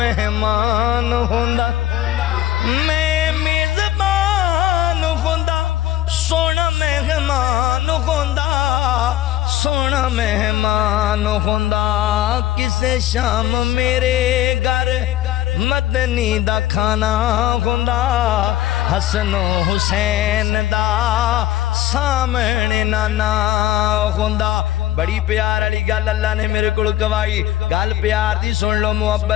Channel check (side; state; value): right; quieter; 13.6 dB